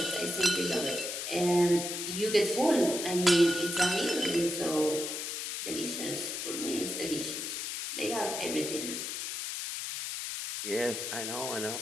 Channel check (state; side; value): noise; left; hiss, 4 dB below the sound